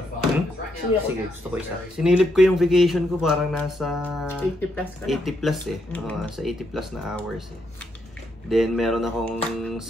Sige, gusto ko isa. Sinilip ko yung vacation ko parang nasa 80 plus ka na. 80 plus eh. Sa 80 plus na hours eh. Then meron akong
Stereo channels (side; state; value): both; normal; correlation 0.77